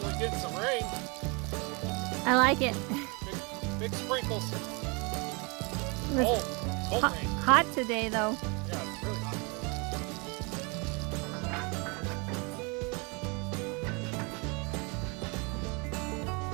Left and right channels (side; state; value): left; quieter; 30.3 dB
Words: getting some rain. I like it. Big sprinkles. It was Cold rain. hot today, though. Yeah, it's really hot.